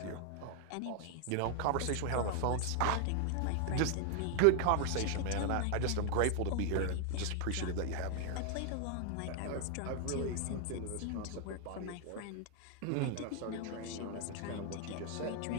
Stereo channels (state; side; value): different; both; correlation 0.00